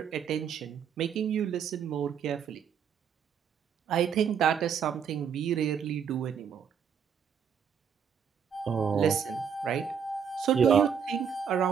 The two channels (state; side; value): quieter; left; 7.5 dB